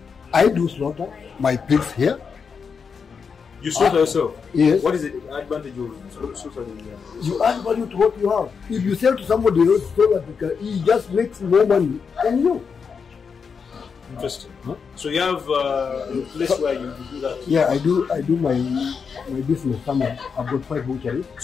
I do slaughter my pigs here. You slaughter yourself? Yes. What is the advantage of slaughtering? You add value to what you have. If you sell to somebody else, he just makes more money than you. Interesting. Huh? So you have a place where you do that? Yeah, I do my business somewhere. I've got 5 butcheries.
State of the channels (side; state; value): right; quieter; 5.9 dB